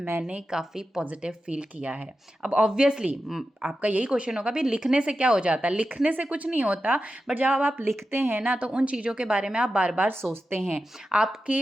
काफ़ी पॉजिटिव फील किया है। अब ऑब्वियसली आपका यही क्वेश्चन होगा, भाई लिखने से क्या हो जाता है? लिखने से कुछ नहीं होता, बट जब आप लिखते हैं ना तो उन चीज़ों के बारे में आप बार बार सोचते हैं,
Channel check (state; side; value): normal; both; correlation 0.91